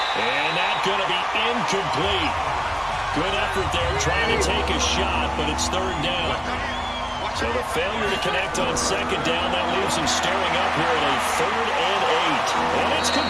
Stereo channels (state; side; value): identical; both; correlation 1.00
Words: And that's going to be incomplete. Good effort there trying to take a shot, but it's third down. So the failure to connect on second down, that leaves him staring up here at a 3rd and 8. And it's